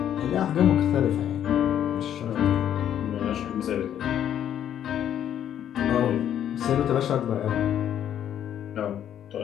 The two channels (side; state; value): right; quieter; 10.2 dB